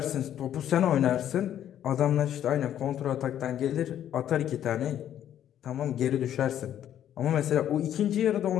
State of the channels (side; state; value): right; quieter; 10.7 dB